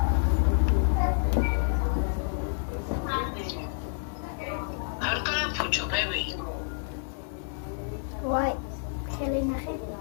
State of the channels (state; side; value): silent; right; digital silence